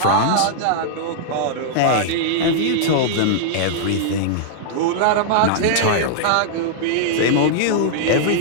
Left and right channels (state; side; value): different; both; correlation -0.02